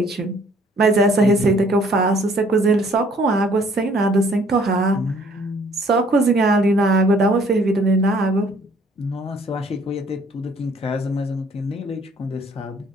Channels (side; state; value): both; normal; correlation 0.60